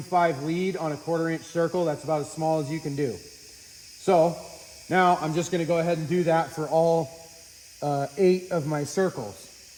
lead on a 1/4 inch circle. That's about as small as you can do. So now I'm just gonna go ahead and do that for all 8 of my circles.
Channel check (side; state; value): both; identical; correlation 1.00